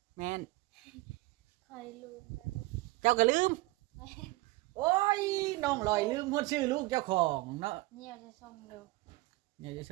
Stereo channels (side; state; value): left; quieter; 20.4 dB